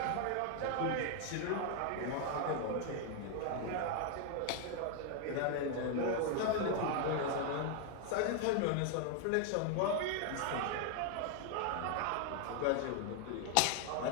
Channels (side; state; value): both; different; correlation 0.01